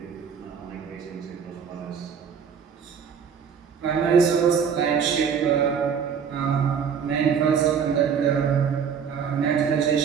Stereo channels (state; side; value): quieter; left; 7.0 dB